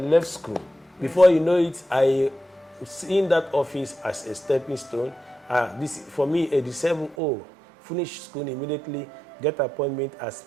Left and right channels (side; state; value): left; drops out; at 7.2 s